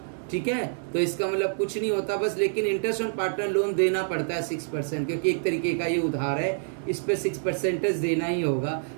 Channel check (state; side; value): silent; left; 60 dB below the other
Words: ठीक है, तो इसका मतलब कुछ नहीं होता बस। लेकिन इंटरेस्ट ऑन पार्टनर लोन देना पड़ता है 6%, क्योंकि एक तरीके का ये उधार है, इस पे 6% देना ही होगा।